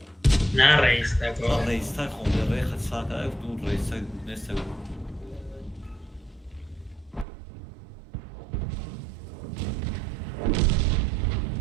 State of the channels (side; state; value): left; drops out; at 7.2 s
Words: Narayista Ha go. Reichstag o da Reichstag da bu Reichstag ne seviyor?